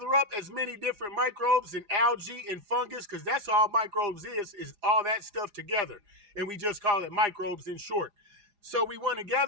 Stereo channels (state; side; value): late; left; 4.9 ms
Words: up as many different microbes and algae and fungus, because that's all microbes is all that stuff together. And we just call it microbes in short. So we want to